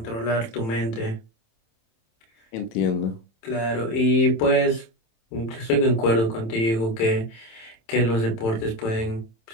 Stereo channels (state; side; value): late; right; 27 ms